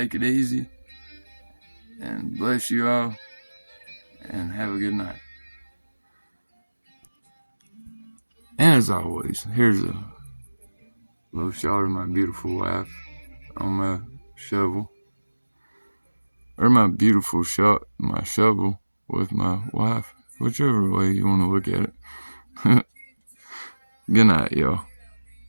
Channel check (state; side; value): inverted; both; correlation -1.00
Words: it easy. And bless you all. And have a good night. And as always, here's a little shot of my beautiful wife on my shovel. Or my beautiful shot, my shovel with my wife. Whichever way you want to look at it. Good night, y'all.